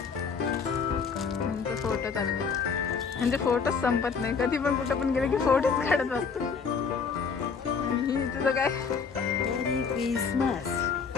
म्हणजे फोटो चालले, म्हणजे फोटोच संपत नाही. कधी पण कुठं पण गेले की फोटोच काढत असतो. आणि तुझं काय? मेरी क्रिसमस.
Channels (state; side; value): quieter; right; 5.7 dB